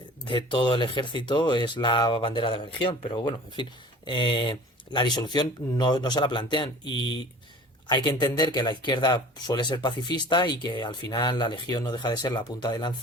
todo el ejército, es la bandera de la Legión. Pero bueno, en fin, la disolución no se la plantean, y hay que entender que la izquierda suele ser pacifista y que al final la Legión no deja de ser la punta de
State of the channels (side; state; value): both; normal; correlation 0.43